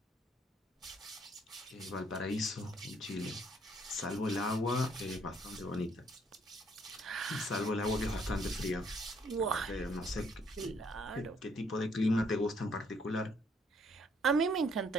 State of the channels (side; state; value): both; normal; correlation 0.67